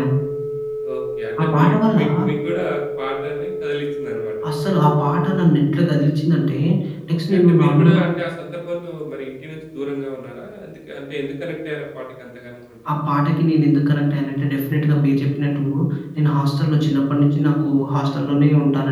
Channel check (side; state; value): both; identical; correlation 1.00